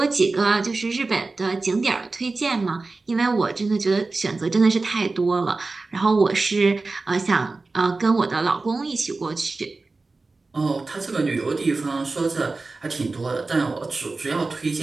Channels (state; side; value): quieter; left; 3.6 dB